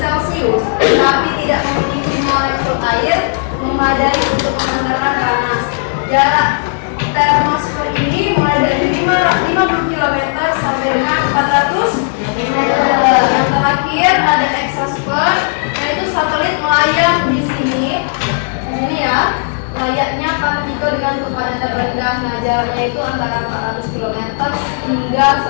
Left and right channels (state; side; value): silent; right; digital silence